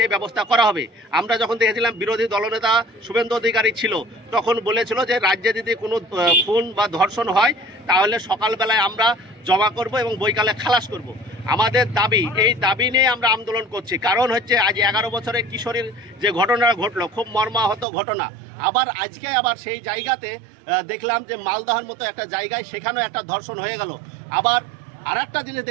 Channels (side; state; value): left; drops out; at 17.9 s